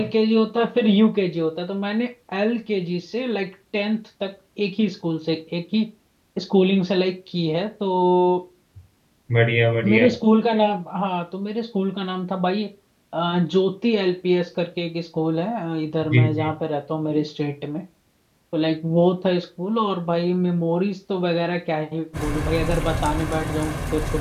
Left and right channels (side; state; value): both; identical; correlation 1.00